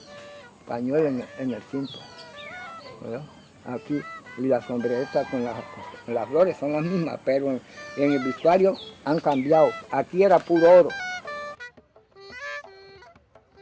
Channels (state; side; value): identical; both; correlation 1.00